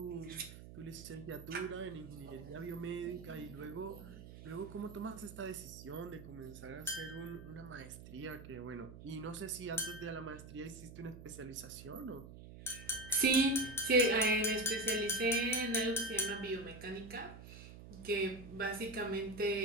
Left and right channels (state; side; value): noise; right; hum, 14 dB below the sound